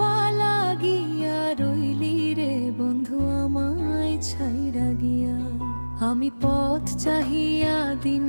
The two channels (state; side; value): inverted; both; correlation -1.00